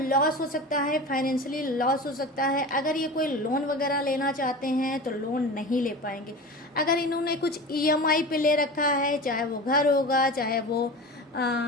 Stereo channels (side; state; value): both; normal; correlation 0.31